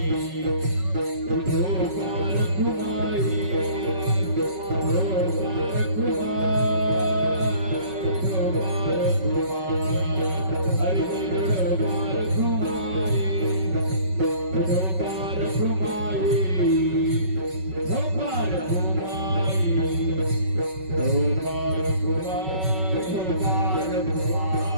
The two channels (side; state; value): left; late; 5.3 ms